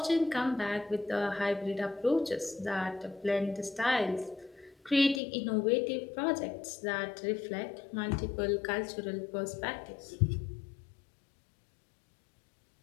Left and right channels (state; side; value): drops out; right; at 5.2 s